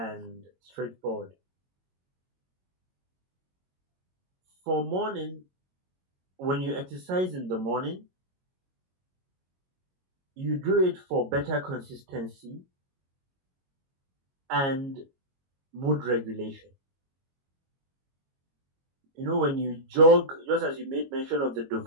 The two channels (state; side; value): late; left; 22 ms